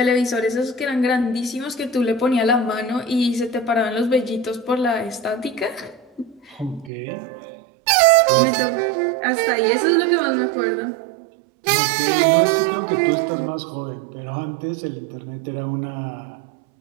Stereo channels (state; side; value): drops out; left; at 6.9 s